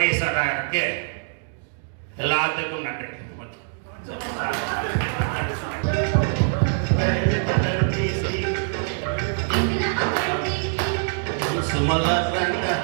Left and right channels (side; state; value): left; silent; 63 dB below the other